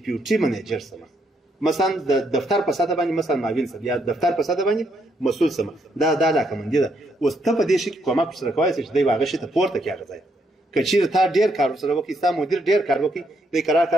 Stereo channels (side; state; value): both; normal; correlation 0.75